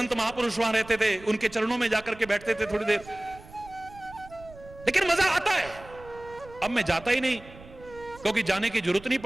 महापुरुष वहां रहते थे, उनके चरणों में जाकर के बैठते थे थोड़ी देर, लेकिन मजा आता है। अब मैं जाता ही नहीं, क्योंकि जाने की जरूरत नहीं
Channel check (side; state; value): right; noise; rumble, 20 dB below the sound